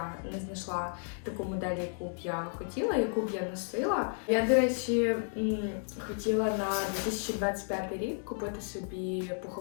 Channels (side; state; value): right; silent; 56 dB below the other